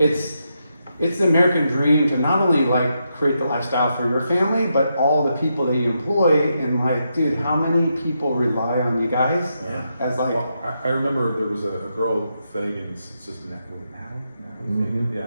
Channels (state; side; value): inverted; both; correlation -0.83